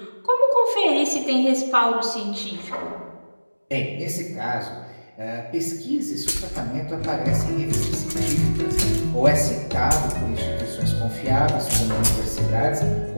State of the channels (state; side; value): inverted; both; correlation -1.00